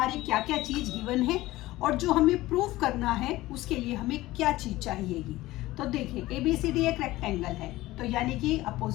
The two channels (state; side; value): quieter; right; 17.6 dB